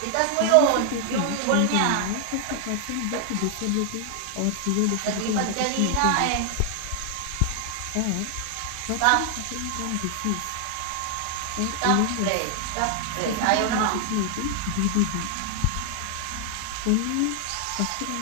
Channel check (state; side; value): different; both; correlation 0.00